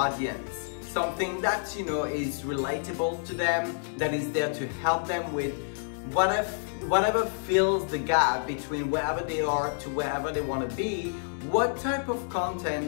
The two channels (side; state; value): right; silent; digital silence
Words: Something that is relatable to them, that is there to help them with whatever fills the gap between wherever they are to wherever they want to be. What type of